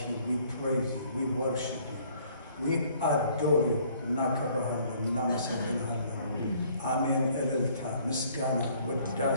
you. We praise you. We worship you. We adore you. Nakabahallam, namasabilhallam. Amen. Elilta, Miskana,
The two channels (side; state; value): both; inverted; correlation -0.60